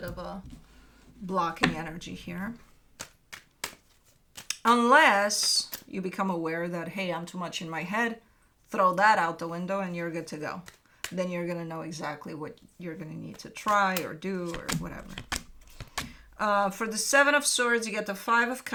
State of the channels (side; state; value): both; identical; correlation 1.00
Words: of a blocking energy here. Unless you become aware that, hey, I'm too much in my head, throw that out the window and you're good to go. Then you're going to know exactly what you're going to need to try or do or whatever. For the Seven of Swords, you get the Five of